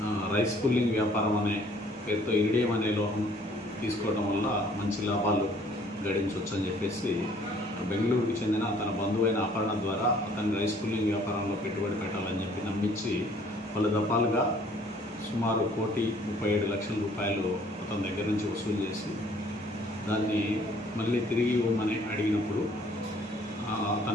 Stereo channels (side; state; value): both; normal; correlation 0.59